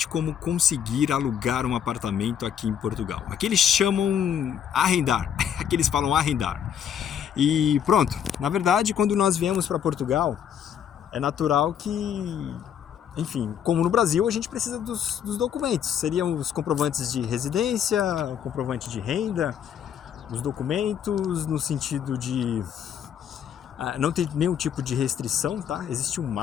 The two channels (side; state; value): right; quieter; 8.9 dB